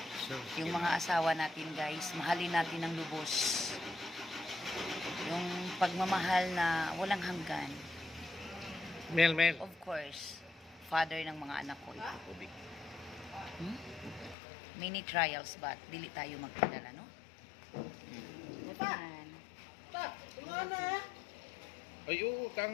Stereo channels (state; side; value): drops out; right; at 14.4 s